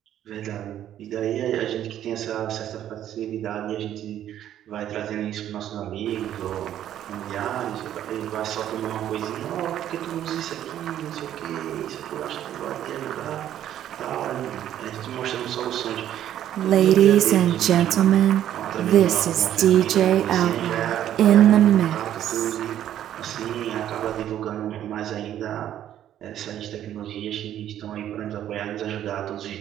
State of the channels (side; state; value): left; quieter; 11.3 dB